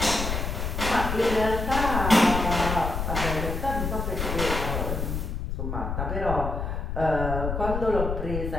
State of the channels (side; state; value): left; noise; rumble, 3 dB below the sound